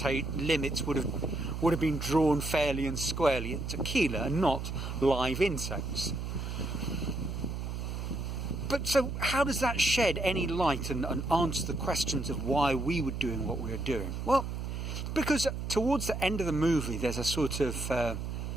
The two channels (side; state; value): right; noise; hum, 4 dB below the sound